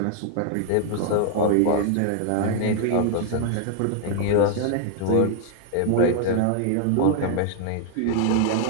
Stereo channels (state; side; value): different; both; correlation 0.00